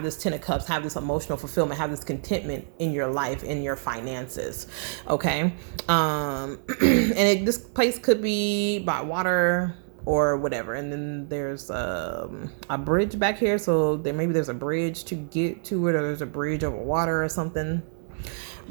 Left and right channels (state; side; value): silent; left; 58 dB below the other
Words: this 10 of cups, have this emotional fulfillment, have this contentment in your life, in your finances. Okay. And this place could be by water or whatever. And then there's a bridge back here. So there's a bridge to get to it, or there's a bridge over water or something.